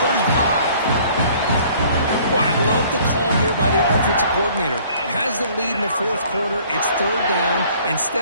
35. Well, I love the call here by the offensive coordinator. Has the lead in the 4th quarter. It's 3rd down.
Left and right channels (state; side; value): inverted; both; correlation -0.56